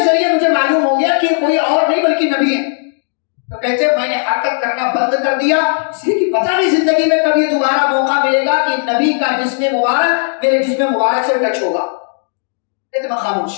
ذریعے مجھے معلوم ہو گیا کہ کوئی اور نہیں بلکہ نبی ہے. تو کہتے میں نے حرکت کرنا بند کر دیا, اس لیے کہ پتہ نہیں زندگی میں کبھی دوبارہ موقع ملے گا کہ نبی کا جسم مبارک میرے جسم مبارک سے ٹچ ہوگا. کہتے میں خاموش.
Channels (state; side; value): silent; right; digital silence